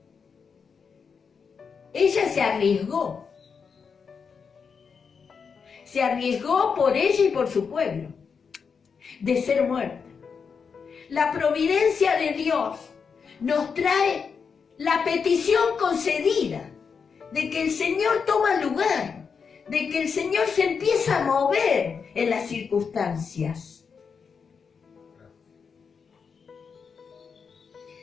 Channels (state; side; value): quieter; right; 5.9 dB